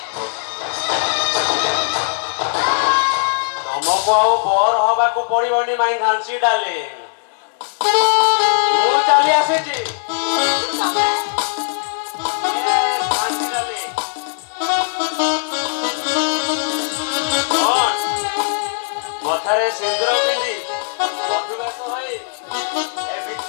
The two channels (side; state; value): right; silent; 67 dB below the other